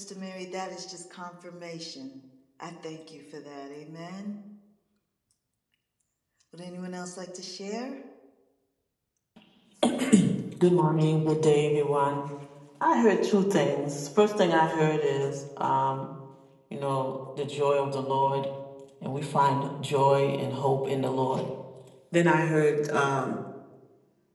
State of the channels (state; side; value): identical; both; correlation 1.00